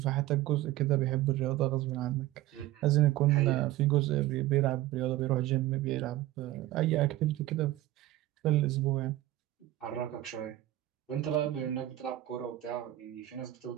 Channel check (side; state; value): left; quieter; 15.6 dB